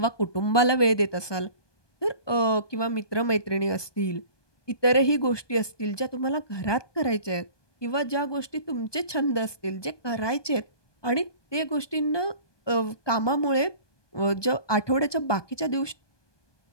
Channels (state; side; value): late; right; 1.2 ms